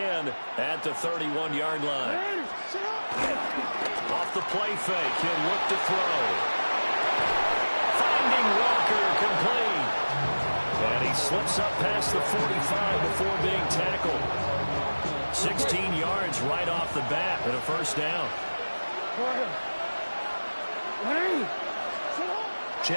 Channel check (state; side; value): inverted; both; correlation -1.00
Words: at the 31-yard line. Off the play fake, he'll look to throw. Finding Walker, complete. And he slips up past the 45 before being tackled. 16 yards right off the bat and a 1st down.